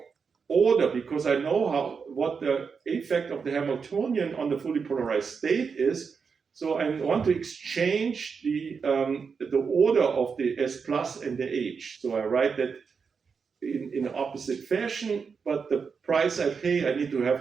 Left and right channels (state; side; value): quieter; left; 5.7 dB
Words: order because I know what the effect of the Hamiltonian on the fully polarized state is. So I want to exchange the order of the S plus and the H. So I write that in opposite fashion, but the price I pay, I need to